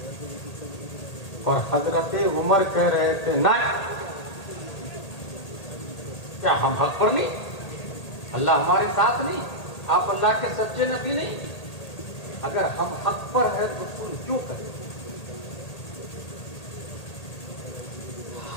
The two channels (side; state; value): right; late; 1.8 ms